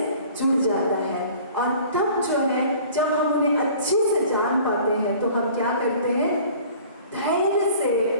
जुड़ जाता है। और तब जो है जब हम उन्हें अच्छे से जान पाते हैं तो हम क्या करते हैं, धैर्य से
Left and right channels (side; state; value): both; inverted; correlation -0.48